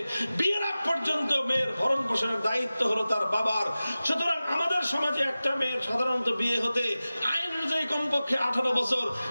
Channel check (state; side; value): inverted; both; correlation -0.96